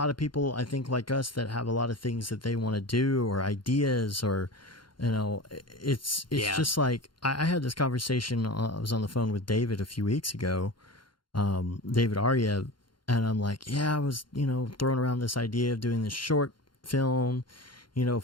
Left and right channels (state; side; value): late; right; 0.72 ms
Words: of people, I think, like us that have a lot of things that they want to do or ideas or, you know, it's just like, I had this conversation, I was on the phone with David a few weeks ago, David Arya, and I'm like, yeah, I was, you know, throwing around this idea of doing this short film, you know,